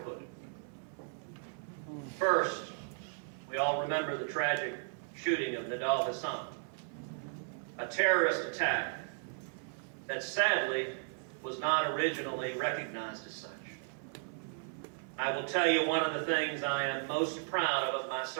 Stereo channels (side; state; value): left; silent; 54 dB below the other